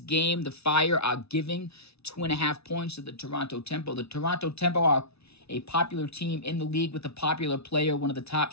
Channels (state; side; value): late; right; 0.79 ms